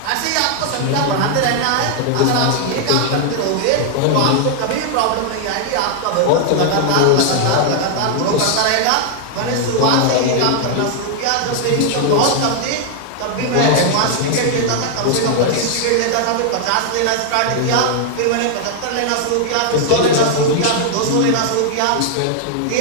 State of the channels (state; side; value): different; both; correlation 0.00